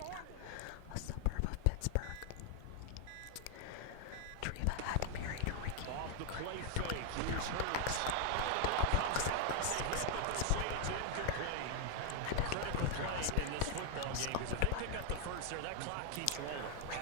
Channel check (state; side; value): different; both; correlation 0.00